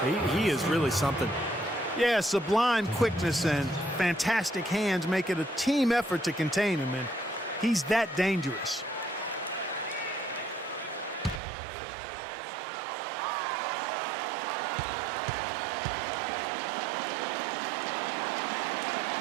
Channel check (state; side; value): drops out; left; at 11.4 s